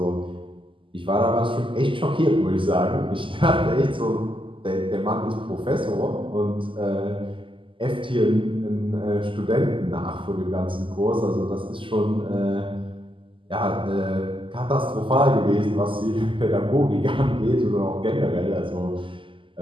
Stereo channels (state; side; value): late; left; 0.25 ms